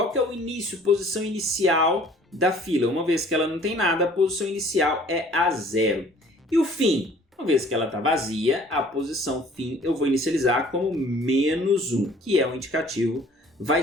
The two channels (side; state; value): both; normal; correlation 0.53